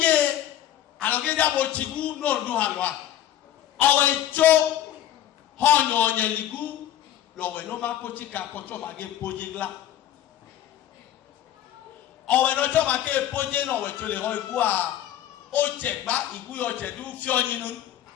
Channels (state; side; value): quieter; right; 11.7 dB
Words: alogeja bo chigu no ndu halwa owe cho honyo nyeligu lowe no makochika kocho mage pojigla owe no cho make poje no we chole ho igu a o chegba igu yo chedu fi oyinu